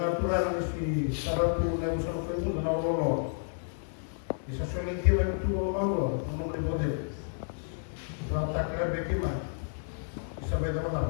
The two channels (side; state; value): right; silent; 57 dB below the other